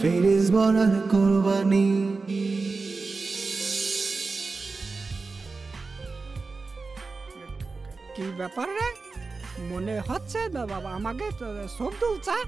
ভরার কুরবানি। কি ব্যাপার রে? মনে হচ্ছে বাবা আমাকে সবদুল চা।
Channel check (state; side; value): quieter; left; 4.0 dB